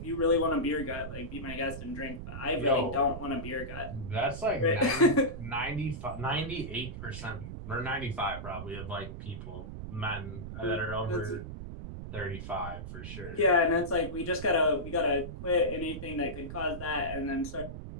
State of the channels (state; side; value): noise; right; rumble, 9 dB below the sound